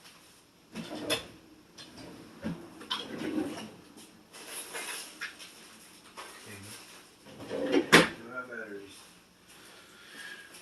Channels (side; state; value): both; identical; correlation 1.00